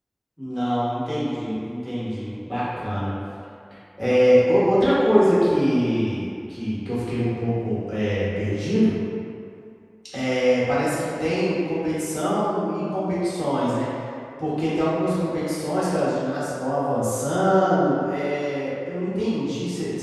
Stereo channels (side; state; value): both; identical; correlation 1.00